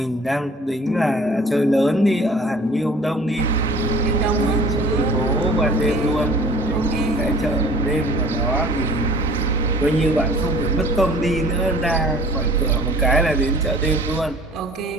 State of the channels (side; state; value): both; normal; correlation 0.48